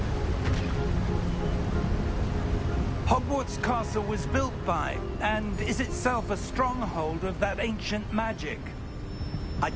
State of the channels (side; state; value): both; identical; correlation 1.00